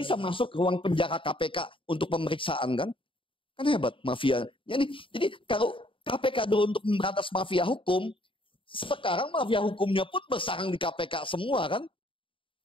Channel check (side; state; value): right; late; 0.25 ms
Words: masuk ke ruang penjara KPK untuk pemeriksaan kan? Kan hebat mafia. Jadi kalau KPK dulu untuk memberantas mafia hukum, sekarang mafia hukumnya pun bersarang di KPK semua kan?